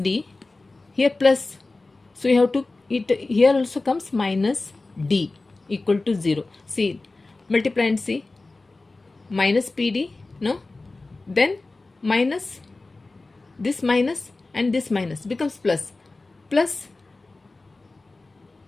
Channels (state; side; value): quieter; right; 3.3 dB